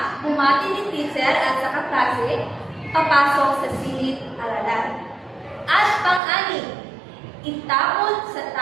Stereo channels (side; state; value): left; drops out; at 6.2 s